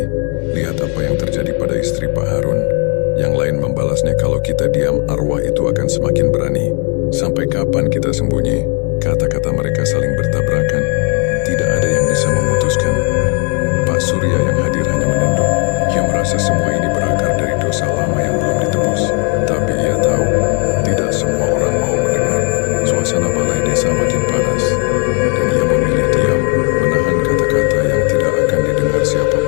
Lihat apa yang terjadi pada istri Pak Harun." Yang lain membalasnya, "Kalau kita diam, arwah itu akan semakin berani. Sampai kapan kita sembunyi?" Kata-kata mereka saling bertabrakan. Tidak ada yang bisa memutuskan. Pak Surya yang hadir hanya menunduk. Ia merasa semua ini berakar dari dosa lama yang belum ditebus. Tapi ia tahu, tidak semua orang mau mendengar. Suasana balai desa makin panas, dan ia memilih diam, menahan kata-kata yang tidak akan didengar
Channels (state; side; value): quieter; right; 36.1 dB